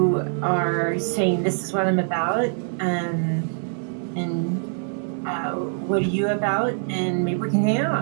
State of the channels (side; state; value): left; silent; digital silence